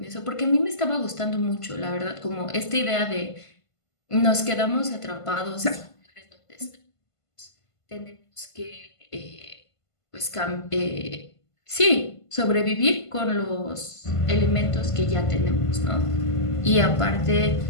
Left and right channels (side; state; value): right; late; 1.5 ms